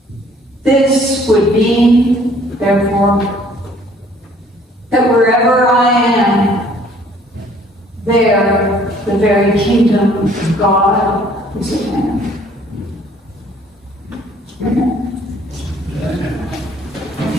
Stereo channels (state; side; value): normal; both; correlation 0.58